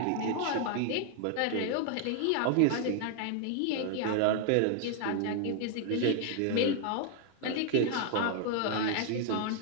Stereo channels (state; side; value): different; both; correlation 0.00